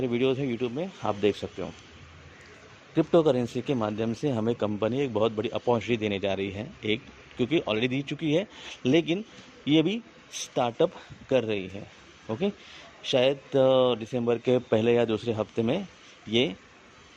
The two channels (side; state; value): both; identical; correlation 1.00